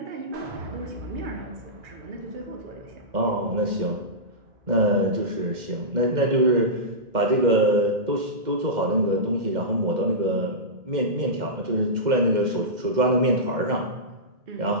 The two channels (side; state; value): left; late; 2.1 ms